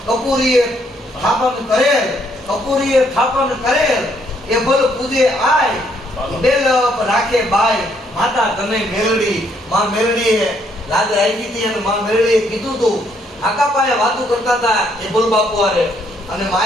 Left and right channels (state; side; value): normal; both; correlation 0.70